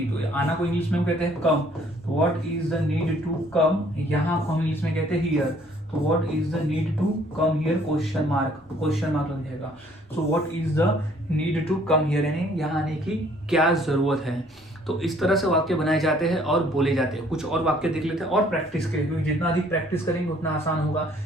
तो आना को इंग्लिश में हम कहते हैं कम। तो what is the need to come, यहाँ को हम इंग्लिश में कहते हैं हियर। तो what is the need to come here, question mark लग जाएगा। So what is the need to come here यानी यहाँ आने की क्या जरूरत है। तो इस तरह से वाक्य बनाए जाते हैं और बोले जाते हैं। कुछ और वाक्य देख लेते हैं और प्रैक्टिस करें, क्योंकि जितना अधिक प्रैक्टिस करेंगे उतना आसान होगा।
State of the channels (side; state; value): both; normal; correlation 0.60